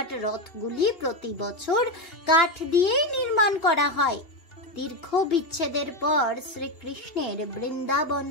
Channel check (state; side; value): late; right; 2.7 ms